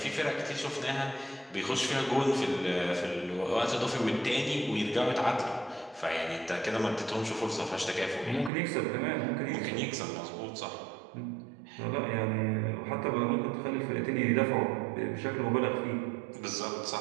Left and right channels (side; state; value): left; drops out; at 8.5 s